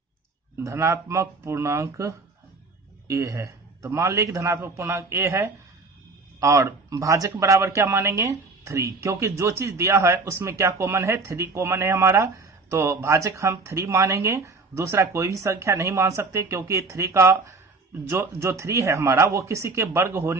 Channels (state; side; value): quieter; left; 3.8 dB